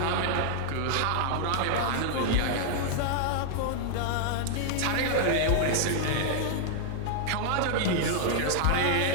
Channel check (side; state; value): both; different; correlation 0.00